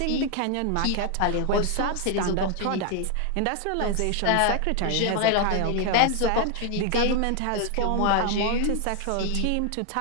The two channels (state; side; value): different; both; correlation 0.00